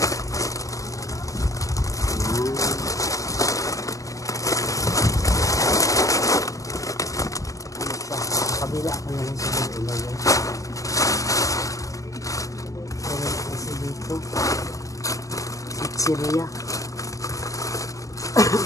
Kabila ko na lang sa ilagay. Pero kasi dito pizzeria.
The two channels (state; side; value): late; right; 0.16 ms